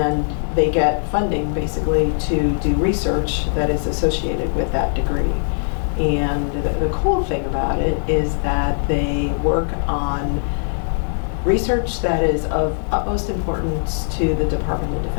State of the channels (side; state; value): right; silent; 66 dB below the other